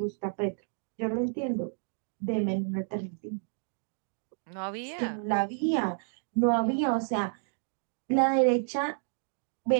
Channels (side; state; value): left; silent; digital silence